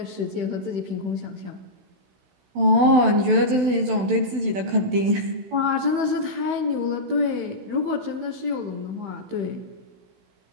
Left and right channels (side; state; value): left; late; 16 ms